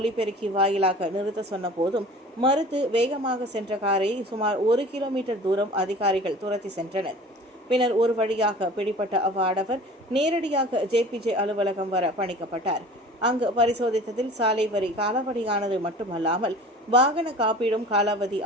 வாயிலாக நிறுத்த சொன்ன போதும் மறுத்து வேகமாக சென்ற காரை சுமார் 1 கிலோமீட்டர் தூரம் அதிகாரிகள் துரத்தி சென்றனர். பின்னர் ஒரு வழியாக பிடிபட்ட அவ்வாடவர் நேரடியாக JPJ அலுவலகம் வர பணிக்கப்பட்டார். அங்கு பரிசோதித்ததில் சாலை வரி காலாவதியானது மட்டுமல்லாமல் வாகன காப்பீடும் காலாவதி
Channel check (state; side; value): normal; both; correlation 0.42